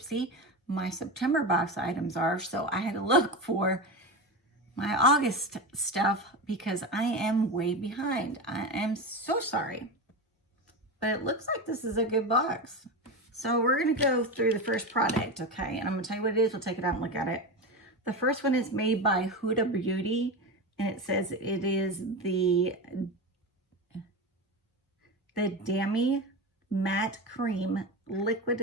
My September box items are, so I had to look for my August stuff because I am way behind. I am so sorry, but it looks like this is a good box. So we're gonna go through the first product, okay? And I'm gonna tell you what it is. We'll take it out and look at it. The first one is made by Huda Beauty, and it says it is the Dami Matte Cream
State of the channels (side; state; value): both; normal; correlation 0.21